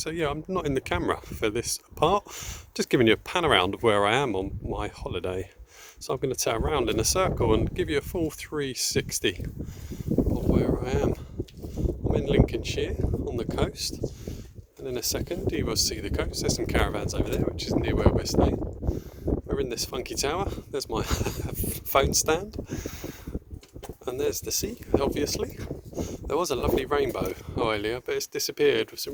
yeah, I'm not in the camera for this part, just giving you a pan around of where I am on my holiday. So I'm going to turn around in a circle and give you a full 360 of where I am. I'm in Lincolnshire on the coast, and in a second you will see the coast. There's some caravans over there, which is near where we're staying. We're in this funky tower. There's my phone stand, and there's the sea, obviously. There was a lovely rainbow earlier, but it's disappeared with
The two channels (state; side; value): identical; both; correlation 1.00